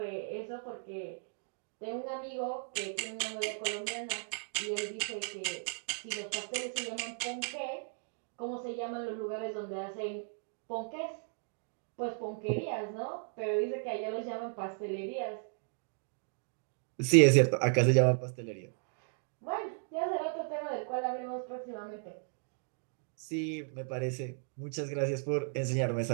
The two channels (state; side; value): silent; left; digital silence